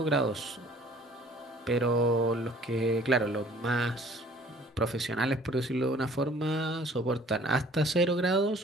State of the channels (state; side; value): normal; both; correlation 0.54